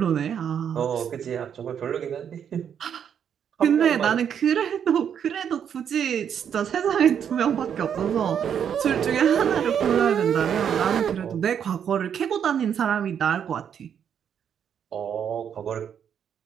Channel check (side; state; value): left; quieter; 8.3 dB